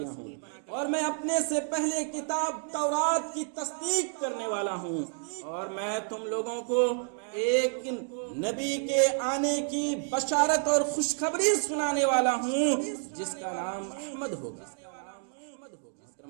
ہوں، اور میں اپنے سے پہلے کتاب تورات کی تصدیق کرنے والا ہوں، اور میں تم لوگوں کو ایک نبی کے آنے کی بشارت اور خوشخبری سنانے والا ہوں جس کا نام احمد ہوگا۔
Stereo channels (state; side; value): silent; left; 58 dB below the other